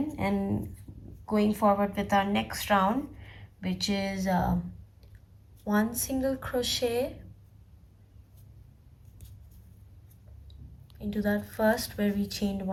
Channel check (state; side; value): identical; both; correlation 1.00